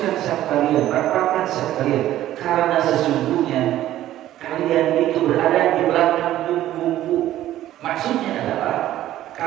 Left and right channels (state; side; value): quieter; left; 13.5 dB